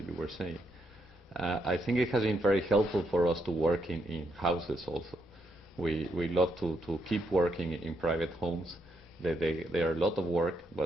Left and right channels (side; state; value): both; normal; correlation 0.77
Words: you were saying. I think it has been very helpful for us to work in houses also. We love to keep working in private homes. They are a lot of work,